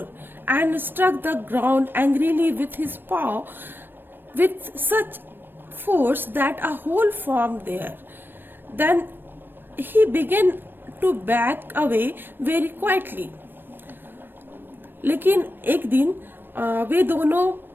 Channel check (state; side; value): late; left; 0.096 ms